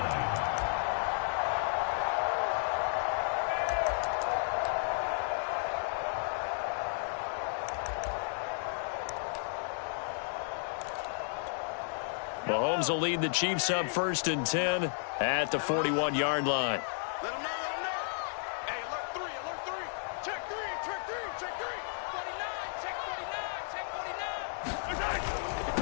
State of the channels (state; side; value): silent; right; digital silence